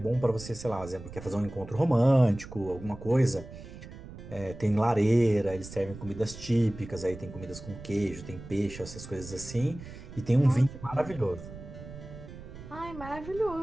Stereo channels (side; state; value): right; noise; rumble, 14 dB below the sound